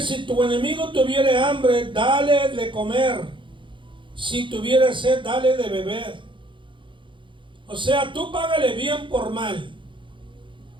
si tu enemigo tuviere hambre, dale de comer; si tuviere sed, dale de beber. O sea, tú págale bien por mal.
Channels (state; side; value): late; left; 0.24 ms